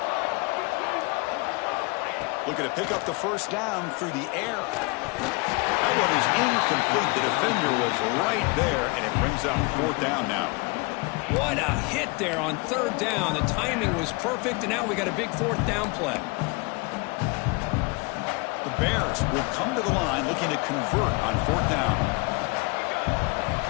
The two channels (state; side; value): quieter; right; 28.2 dB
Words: Looking to pick up the first down through the air. That one is incomplete. The defender was right there, and it brings up fourth down now. What a hit there on third down. The timing was perfect, and now we got a big fourth down play. The Bears will come to the line looking to convert on fourth down.